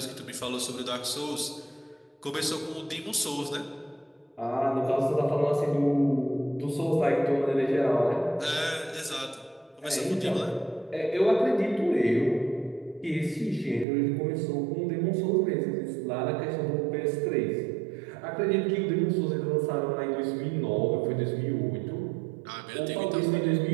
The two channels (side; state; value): left; drops out; at 13.9 s